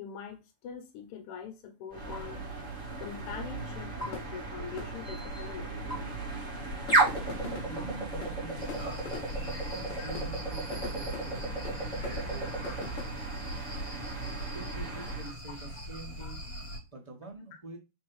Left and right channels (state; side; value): late; right; 7.0 ms